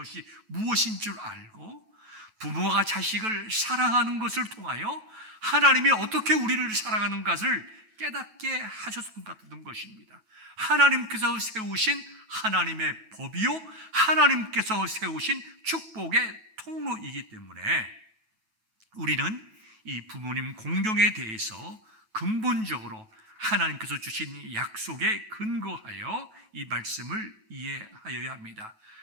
무엇인 줄 알고 부모가 자식을 사랑하는 것을 통하여 하나님이 어떻게 우리를 사랑하는 것을 깨닫게 하셨던 것입니다. 하나님께서 세우신 하나님의 법이요 하나님께서 세우신 축복의 통로이기 때문에 우리는 이 부모님 공경에 대해서 근본적으로 하나님께서 주신 약속에 근거하여 이 말씀을 이해하여야 합니다.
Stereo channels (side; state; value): left; late; 9.2 ms